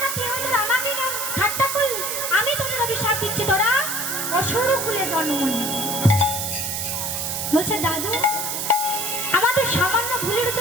নাতি হয়ে তোরা আমাকে না ঠাট্টা করলি, আমি তোদের অভিশাপ দিচ্ছি, তোরা অসুর কুলে জন্ম নিবি। বলছে দাদু, আমাদের সামান্য ভুলের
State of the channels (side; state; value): right; noise; hiss, 2 dB below the sound